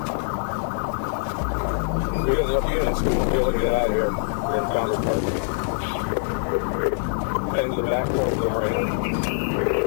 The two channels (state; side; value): silent; right; 55 dB below the other